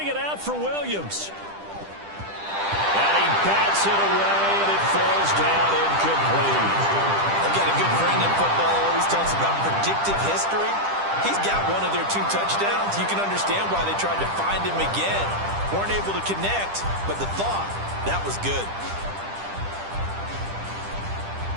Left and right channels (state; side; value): late; left; 10 ms